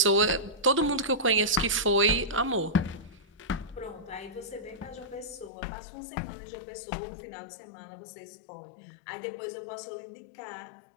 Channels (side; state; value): right; drops out; at 5.5 s